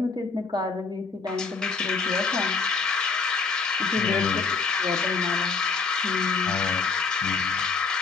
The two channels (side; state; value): right; quieter; 4.8 dB